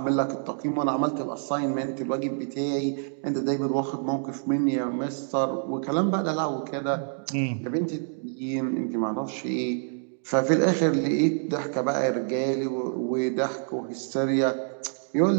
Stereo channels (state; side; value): silent; left; digital silence